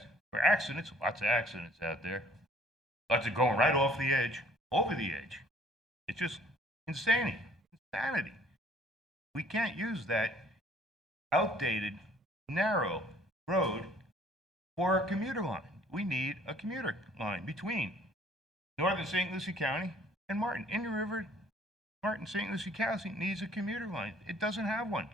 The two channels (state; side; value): normal; both; correlation 0.57